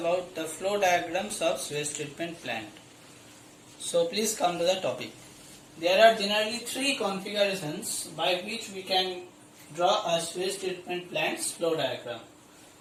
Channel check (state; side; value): identical; both; correlation 1.00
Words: the flow diagrams of sewage treatment plant. So please come to the topic. There are generally three configurations by which we can draw a sewage treatment plant's flow diagram.